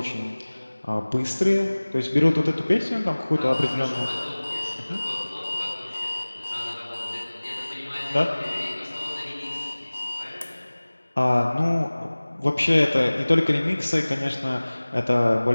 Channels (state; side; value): inverted; both; correlation -1.00